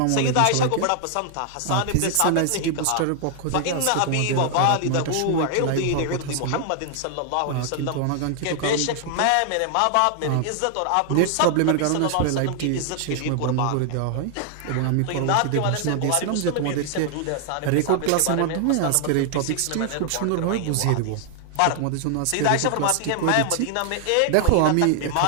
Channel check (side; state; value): both; different; correlation 0.00